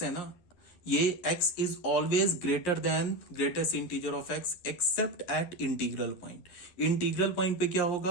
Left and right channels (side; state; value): right; late; 11 ms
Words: है ना, ये x is always greater than greatest integer of x except at integral point. Integral point पे क्या